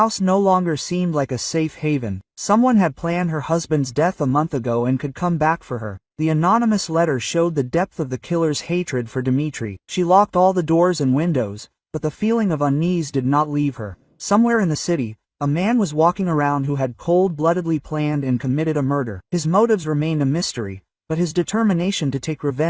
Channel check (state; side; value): identical; both; correlation 1.00